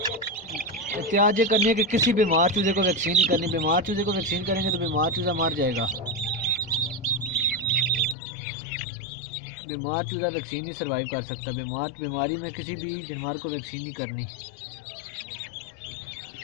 एहतियात ये करनी है कि किसी बीमार चूज़े को वैक्सीन नहीं करनी। बीमार चूज़े को वैक्सीन करेंगे तो बीमार चूज़ा मर जाएगा। बीमार चूज़ा वैक्सीन नहीं सर्वाइव कर सकता। बीमारी में किसी भी जानवर को वैक्सीन नहीं करनी।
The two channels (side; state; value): right; drops out; at 8.2 s